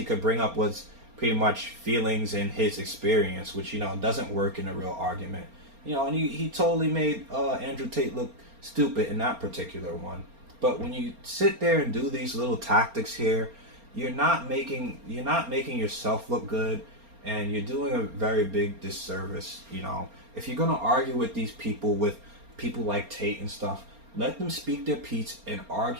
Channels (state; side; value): late; left; 4.3 ms